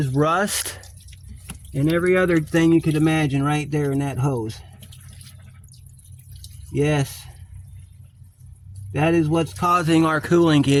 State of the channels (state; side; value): identical; both; correlation 1.00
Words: rust and every other thing you could imagine right there in that hose. Yes. That is what's causing our cooling